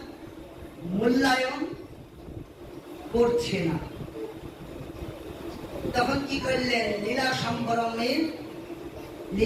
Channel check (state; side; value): identical; both; correlation 1.00